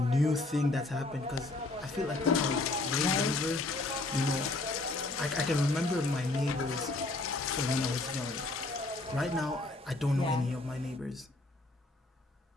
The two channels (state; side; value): quieter; right; 3.0 dB